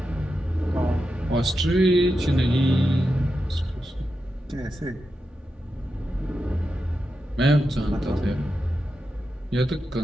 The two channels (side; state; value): both; normal; correlation 0.88